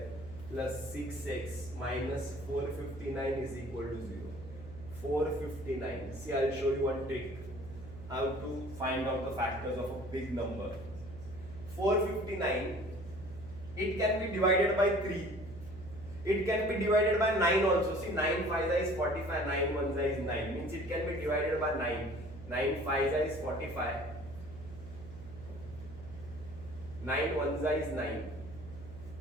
plus 6x minus 459 is equal to 0. 459. See, I will show you one trick. How to find out the factors of a big number. 459, it can be divided by 3. It can be divided by 9 also. See, 9 5 is 45, 9 1 is 9. Means it can be divided by 9. 9 5 is 45. 9 1 is 9.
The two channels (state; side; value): noise; right; hum, 14 dB below the sound